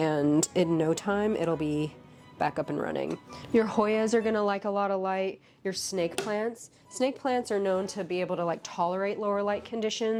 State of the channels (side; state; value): both; identical; correlation 1.00